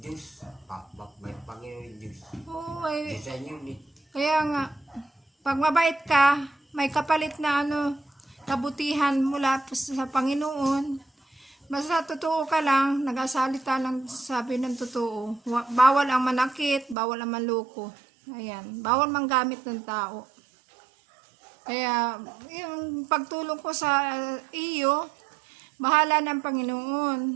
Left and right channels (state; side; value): drops out; left; at 16.9 s